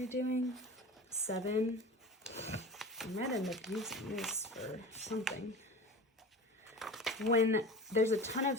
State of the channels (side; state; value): both; normal; correlation 0.34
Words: doing? 7. I might end up using this for something. When there's a ton